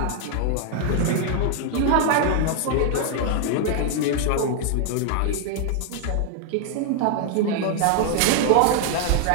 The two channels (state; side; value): different; both; correlation 0.00